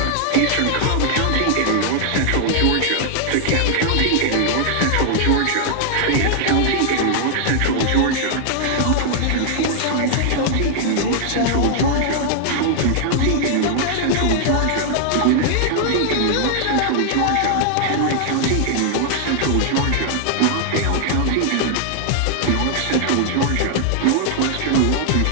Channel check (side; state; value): both; different; correlation -0.01